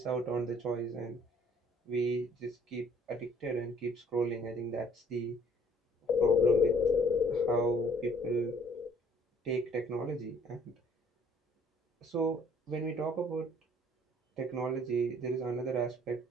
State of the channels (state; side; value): normal; both; correlation 0.59